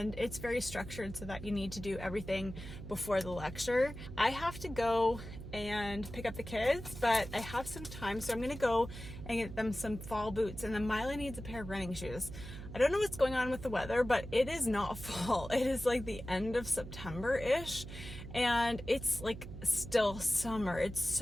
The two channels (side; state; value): right; noise; hum, 11 dB below the sound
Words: it's very structured so that you need to do everything before the lecture. I have to go and pick up the kids, but I have some time, so I'm gonna go and get them some fall boots, and then Mila needs a pair of running shoes. I don't know what's going on with the weather, but it is not fall. It is like the end of September-ish, and it's like still summer. It's